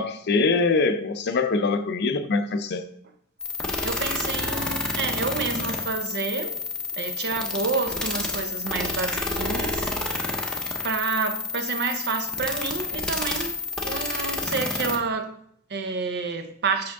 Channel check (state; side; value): normal; both; correlation 0.10